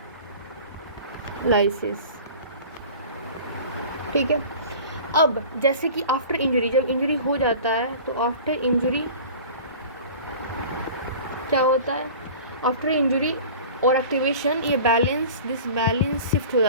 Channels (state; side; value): inverted; both; correlation -0.40